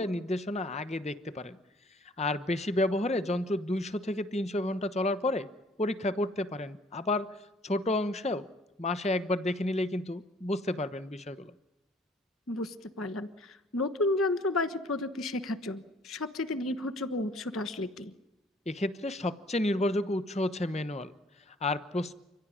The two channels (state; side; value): normal; both; correlation 0.58